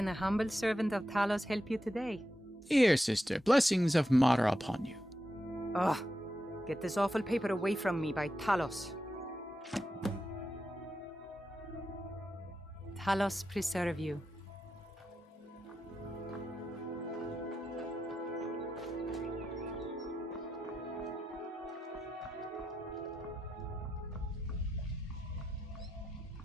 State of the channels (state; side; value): normal; both; correlation 0.87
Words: a humble servant of Talos help you today? Here, sister. Blessings of Mara upon you. Ugh. Get this awful paper away from me by Talos. Talos preserve you.